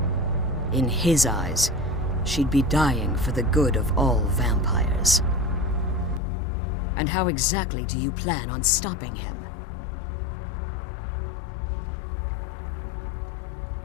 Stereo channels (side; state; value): right; drops out; at 6.2 s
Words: In his eyes, she'd be dying for the good of all vampires. And how exactly do you plan on stopping him?